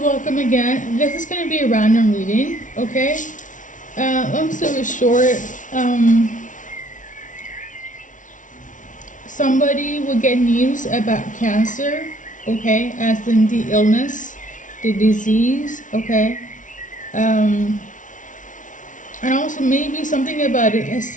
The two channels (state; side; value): late; right; 0.37 ms